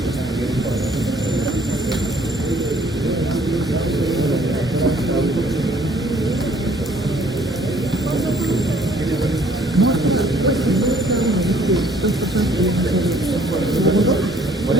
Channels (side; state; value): both; normal; correlation 0.60